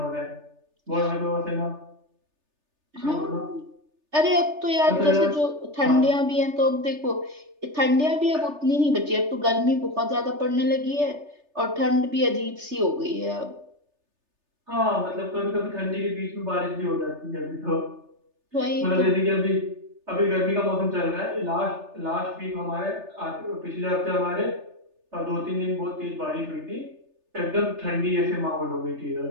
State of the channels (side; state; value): left; late; 3.3 ms